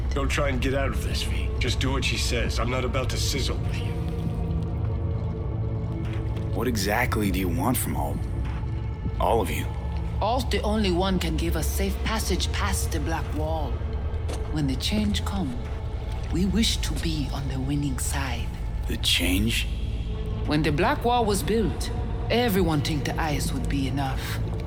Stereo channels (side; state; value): both; identical; correlation 1.00